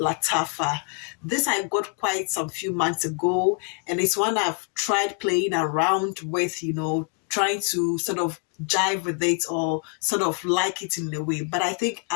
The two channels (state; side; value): quieter; right; 35.4 dB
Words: This I got quite some few months ago, and it's one I've tried playing around with, trying to sort of jive with it or sort of like it in a way. But I think